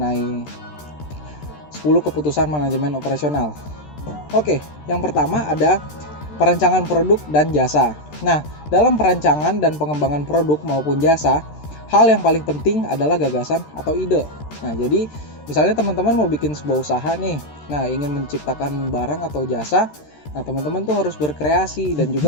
10 keputusan manajemen operasional. Oke, yang pertama ada perancangan produk dan jasa. Nah, dalam perancangan dan pengembangan produk maupun jasa, hal yang paling penting adalah gagasan atau ide. Nah, jadi misalnya teman-teman mau bikin sebuah usaha nih, nah ingin menciptakan barang atau jasa, nah teman-teman tuh harus berkreasi dan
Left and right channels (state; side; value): late; right; 13 ms